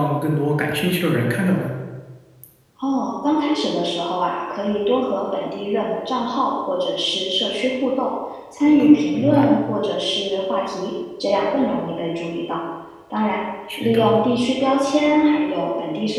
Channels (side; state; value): both; identical; correlation 1.00